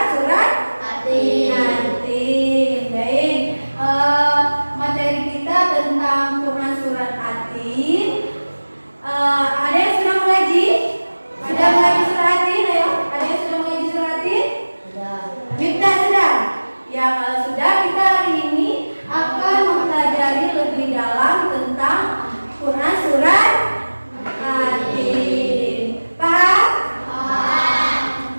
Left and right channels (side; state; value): both; inverted; correlation -1.00